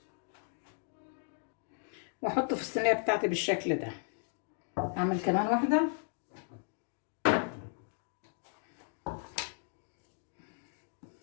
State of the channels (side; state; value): right; silent; 54 dB below the other